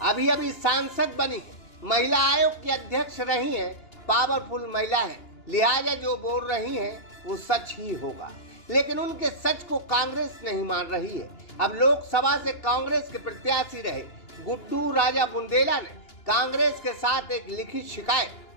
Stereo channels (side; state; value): right; late; 2.9 ms